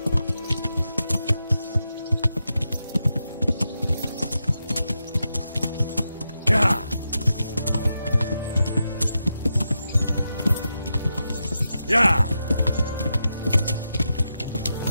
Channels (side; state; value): both; inverted; correlation -0.87